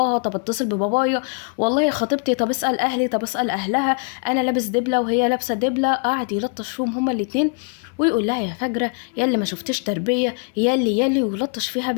طب اتصل ببابايا، والله خطيبتي، طب اسال اهلي، طب اسال اهلها، انا لابس دبله وهي لابسه دبله. قعد يلطش فيهم هما الاتنين ويقول لها يا فجره، يا اللي ما شفتش تربيه، يا اللي ويلطش فيها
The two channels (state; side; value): quieter; right; 38.0 dB